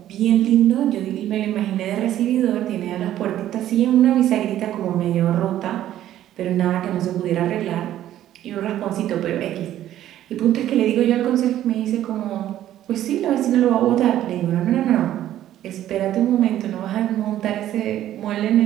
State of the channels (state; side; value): quieter; left; 12.4 dB